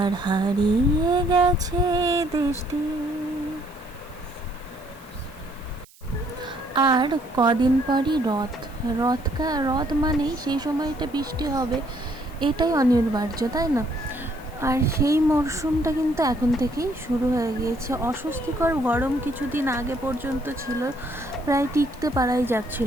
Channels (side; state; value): right; noise; hiss, 26 dB below the sound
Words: হারিয়ে গেছে দৃষ্টি। আর কদিন পরই রথ মানেই সেই সময়টা বৃষ্টি হবে, এটাই অনিবার্য, তাই না? আর সেই মরশুমটা কিন্তু এখন থেকেই শুরু হয়ে গিয়েছে। অস্বস্তিকর গরম কিছুদিন আগে পর্যন্ত ছিল, প্রায় টিকতে পারাই